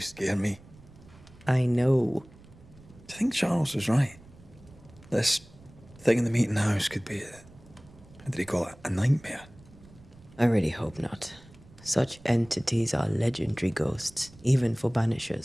scare me. I know. Do you think Charles was right? This thing in the meeting house could be how did he call it? A nightmare? I really hope not. Such entities are legendary ghosts, even for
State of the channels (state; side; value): noise; right; rumble, 23 dB below the sound